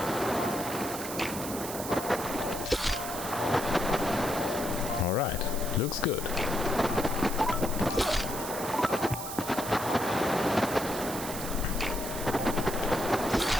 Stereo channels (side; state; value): right; noise; hiss, 8 dB below the sound